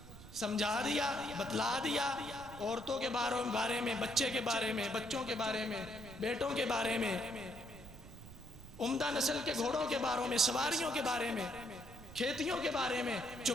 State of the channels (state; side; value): noise; right; rumble, 16 dB below the sound